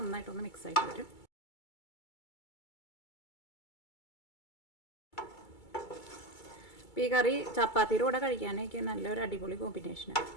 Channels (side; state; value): right; late; 2.3 ms